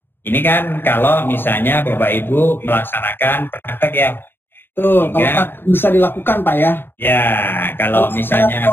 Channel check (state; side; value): late; right; 0.10 ms